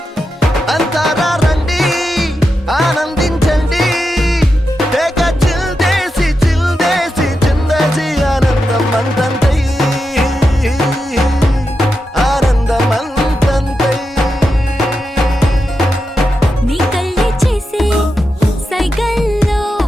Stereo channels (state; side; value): normal; both; correlation 0.88